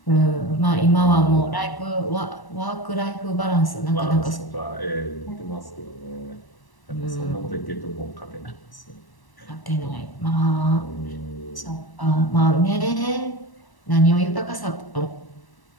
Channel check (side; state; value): right; late; 1.1 ms